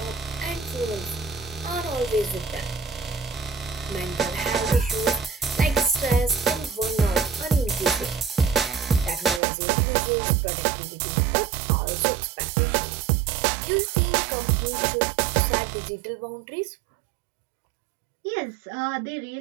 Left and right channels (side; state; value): left; drops out; at 9.4 s